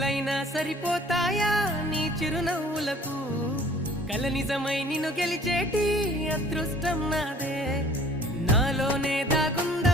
సరిపోతాయా నీ చిరునవ్వులకు కల నిజమై నిన్ను గెలిచేటి అదృష్టం నాదే నాలోనే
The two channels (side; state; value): both; normal; correlation 0.52